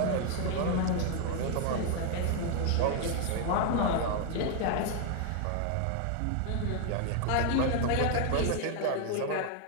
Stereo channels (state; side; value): different; both; correlation 0.00